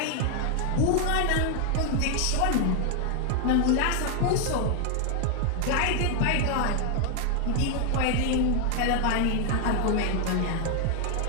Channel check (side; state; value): both; different; correlation 0.00